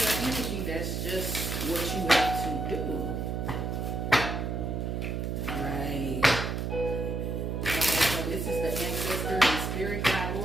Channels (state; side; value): noise; right; hum, 2 dB below the sound